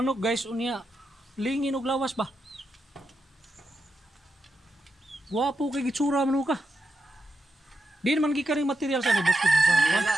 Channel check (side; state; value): both; normal; correlation 0.86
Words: guys, unya lingin og lawas ba? Guwapo kay gitsura manok ka. Di naman gikaring material sa ni Boss Pedro. Manila,